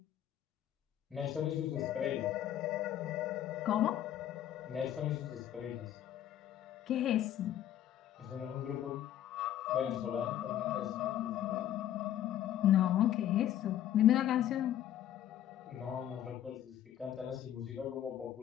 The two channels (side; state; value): right; quieter; 11.4 dB